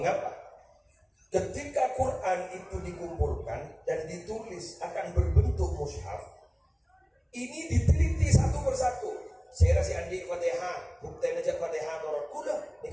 Ketika Quran itu dikumpulkan dan ditulis akan berbentuk mushaf, ini diteliti satu persatu. Saya rasa andi Fatihah, bukti aja Fatihah torot kula,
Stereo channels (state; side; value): identical; both; correlation 1.00